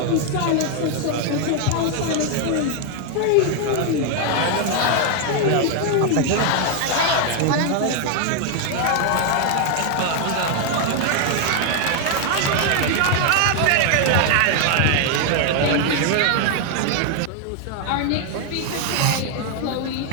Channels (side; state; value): both; different; correlation 0.00